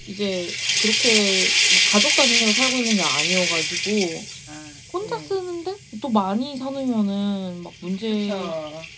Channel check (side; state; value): both; identical; correlation 1.00